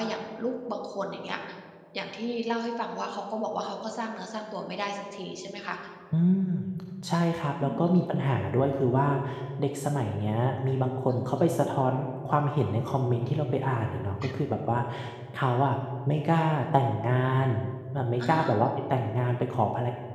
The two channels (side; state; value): both; identical; correlation 1.00